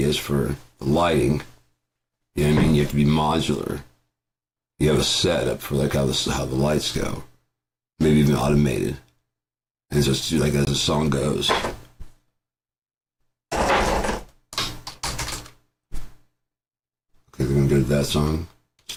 for the lighting. You know what I mean? You have to be modular. You have a setup for, like, how the lights go. Maybe even automated. And so it's like as the song goes. Okay, we're gonna go to that song.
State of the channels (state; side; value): identical; both; correlation 1.00